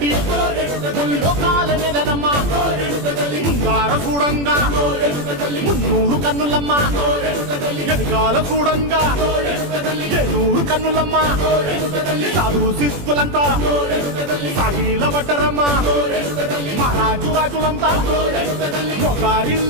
లోకాల నెలనమ్మా ముంగార చూడంగా మున్నూరు కన్నులమ్మా ఎనకాల చూడంగా ఏనూరు కన్నులమ్మా సాధు శిస్తులంతా సాగిల పడ్డరమ్మా మహారాజు రాజులంతా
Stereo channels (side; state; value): left; late; 21 ms